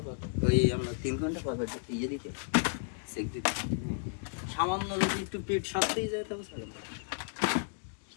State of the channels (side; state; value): right; silent; digital silence